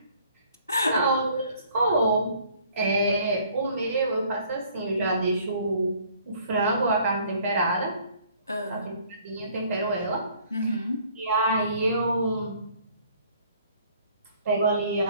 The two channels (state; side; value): inverted; both; correlation -0.58